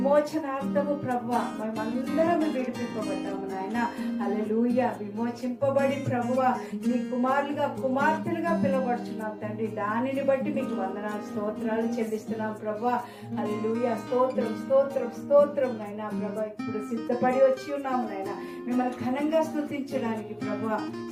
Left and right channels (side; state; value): both; identical; correlation 1.00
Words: ప్రభువా మేమందరం విడిపింపబడ్డాము నాయన. హల్లెలూయా. విమోచింపబడి ప్రభువా నీ కుమారులుగా కుమార్తెలుగా పిలువబడుచున్నాం తండ్రి. దానిని బట్టి మీకు వందనాలు స్తోత్రాలు చెల్లిస్తున్నాం ప్రభువా. హల్లెలూయా. స్తోత్రం స్తోత్రం స్తోత్రం నాయన ప్రభువా. ఇప్పుడు సిద్ధపడి వచ్చి ఉన్నాము నాయన మిమ్మల్ని ఘనంగా స్తుతించడానికి ప్రభువా.